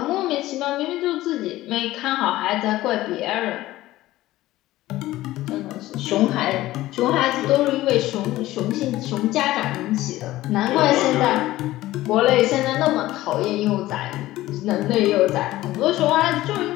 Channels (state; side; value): quieter; right; 16.3 dB